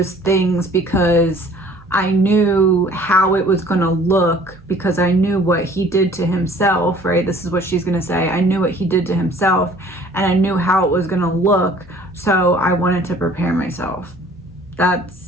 things because I knew how it was going to look, because I knew what he did to himself, right? This is what she's going to say. I knew what he did to himself, and I knew how it was going to look. So I wanted to prepare myself.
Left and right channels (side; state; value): right; noise; hum, 25 dB below the sound